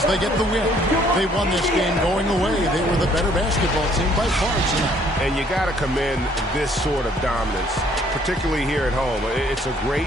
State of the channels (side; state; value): both; normal; correlation 0.63